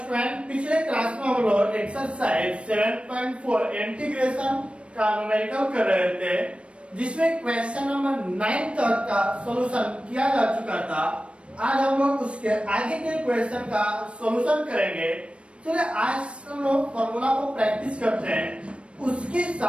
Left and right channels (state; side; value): late; left; 0.060 ms